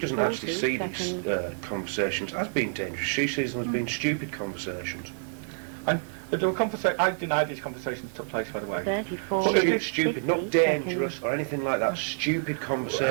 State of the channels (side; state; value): left; silent; 59 dB below the other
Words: doesn't actually 40 see these seconds. conversations as being dangerous. She sees them as being stupid conversations. And there were I deny these conversations took place, by the way. 34 Well, minutes, Stupid, 50 not dangerous seconds. or anything like that. Stupid We're